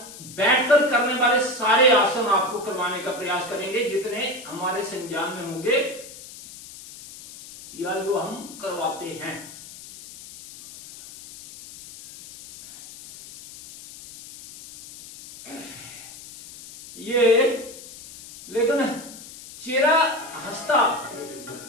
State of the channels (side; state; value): left; noise; hiss, 16 dB below the sound